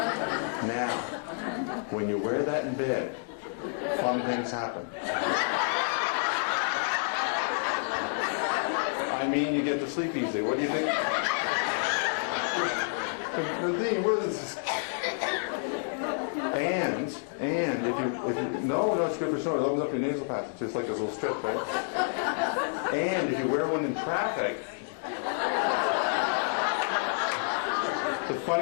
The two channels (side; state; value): right; silent; digital silence